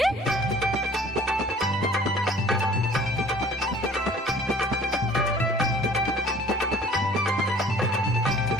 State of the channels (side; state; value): both; normal; correlation 0.51